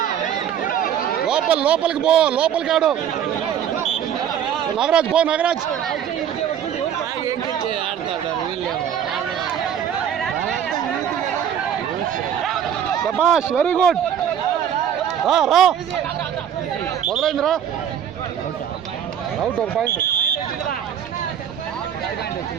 లోపలికి పో. లోపలికి ఆడు. నాగరాజ్ పో. నాగరాజ్ శబాష్ వెరీ గుడ్. రా మొదలైందిరా. Out 1 point.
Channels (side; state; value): left; quieter; 9.1 dB